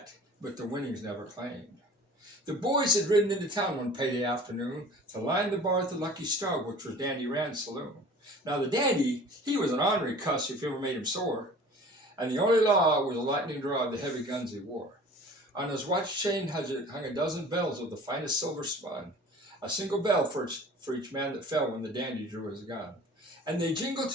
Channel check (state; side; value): normal; both; correlation 0.44